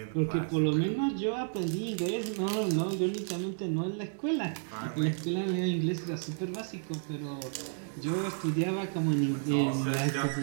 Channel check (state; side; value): silent; left; digital silence